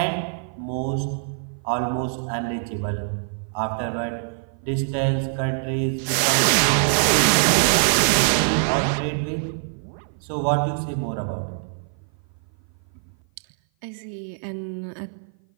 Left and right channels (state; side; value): silent; left; 56 dB below the other